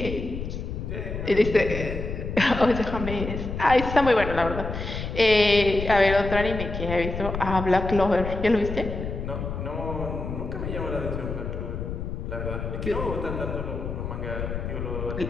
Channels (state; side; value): noise; left; rumble, 5 dB below the sound